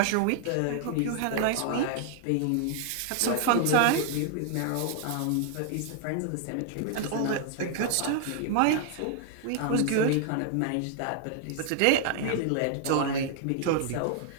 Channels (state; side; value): different; both; correlation 0.00